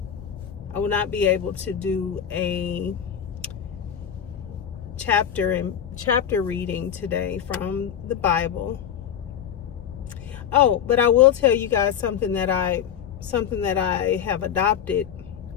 a chapter reading today from the Bible. Oh, but I will tell you guys something that I have adopted,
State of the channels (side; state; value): right; quieter; 8.9 dB